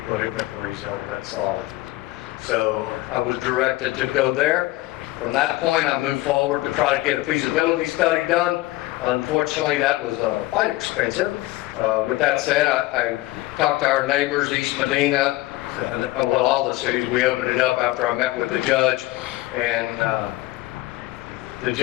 put it in the Carrizo. That's solid. So I was directed to go there. From that point, I moved forward to try to get a feasibility study done. Unfortunately, that was quite expensive. With that said, I talked to our neighbors, East Medina, well, all the cities. We opened it up after I met with the judge, and the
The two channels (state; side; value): quieter; right; 18.5 dB